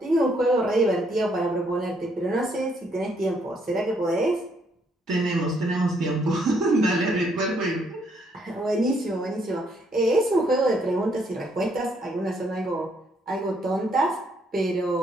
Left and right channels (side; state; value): both; normal; correlation 0.71